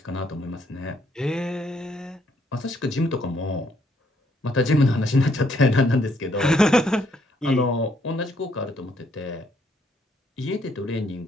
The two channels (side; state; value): both; normal; correlation 0.70